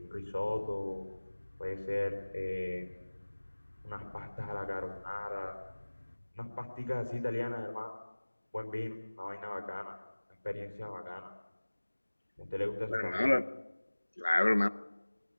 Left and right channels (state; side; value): inverted; both; correlation -1.00